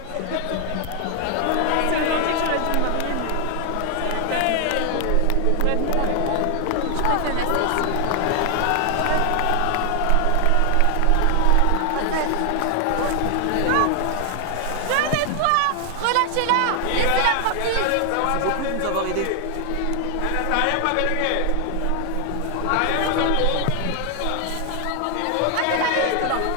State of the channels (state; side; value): different; both; correlation 0.00